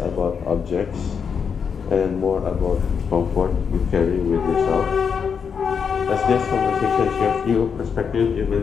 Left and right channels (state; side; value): quieter; right; 6.5 dB